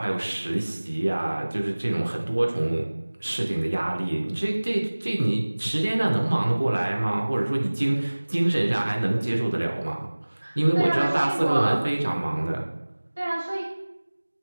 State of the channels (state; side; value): inverted; both; correlation -1.00